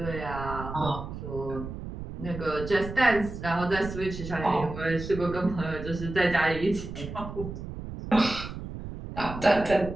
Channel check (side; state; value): right; noise; rumble, 9 dB below the sound